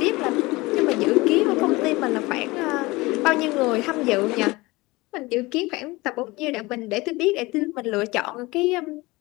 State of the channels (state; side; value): quieter; right; 22.0 dB